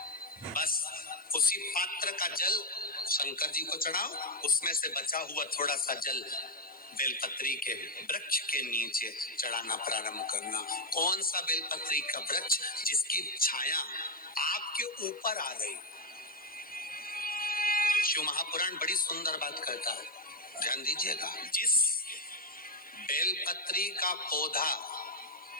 बस उसी पात्र का जल शंकर जी को चढ़ाओ, उसमें से बचा हुआ थोड़ा सा जल बेलपत्री के वृक्ष के नीचे चढ़ाना प्रारंभ करना। कौन सा बेलपत्री का वृक्ष? जिसकी छाया आपके ऊपर आ गई। शिव महापुराण बड़ी सुंदर बात कहता है, ध्यान दीजिएगा। जिस बेलपत्री का पौधा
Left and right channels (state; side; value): noise; left; hiss, 28 dB below the sound